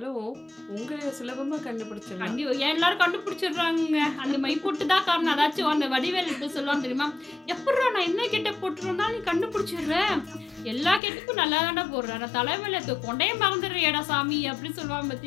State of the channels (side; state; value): right; drops out; at 11.0 s